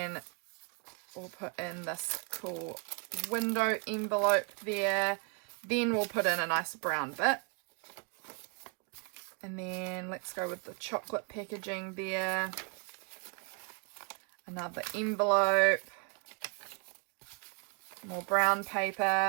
we'll put in this cool window envelope there. Then we'll put in a nice brown bit. And then let's go with the chocolate packaging there. Another envelope. More brown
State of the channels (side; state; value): left; quieter; 36.7 dB